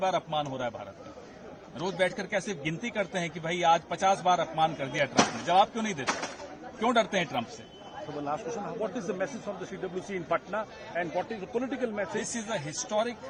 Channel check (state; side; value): identical; both; correlation 1.00